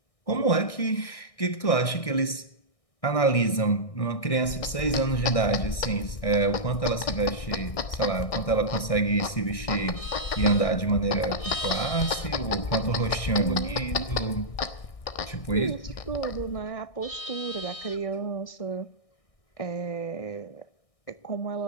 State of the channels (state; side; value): late; right; 1.6 ms